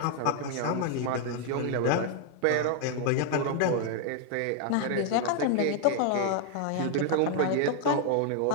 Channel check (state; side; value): different; both; correlation 0.00